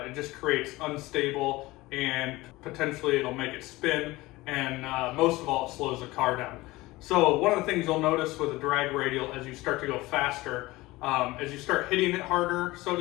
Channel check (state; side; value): quieter; right; 19.9 dB